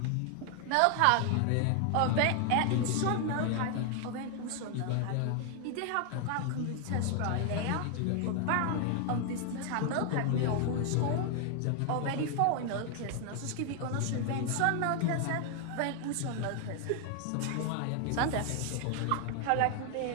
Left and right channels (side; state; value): both; different; correlation 0.00